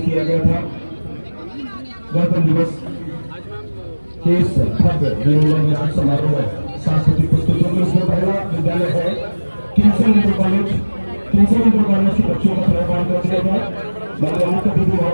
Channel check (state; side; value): inverted; both; correlation -1.00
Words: किया गया था गणतंत्र दिवस के इस भव्य विजयोन्मुख समारोह में सांस्कृतिक प्रस्तुतियों में। इसमें पहला विद्यालय है किंगसन इंटर कॉलेज के बच्चों का प्रभाव कर दिया था। माननीय मुख्य अतिथि